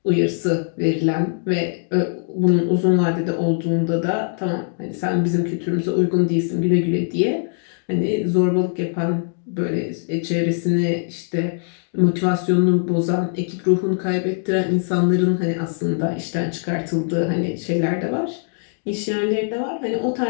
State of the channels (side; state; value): right; silent; digital silence